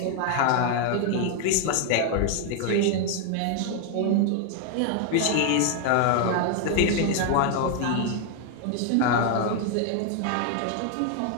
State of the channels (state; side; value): different; both; correlation 0.00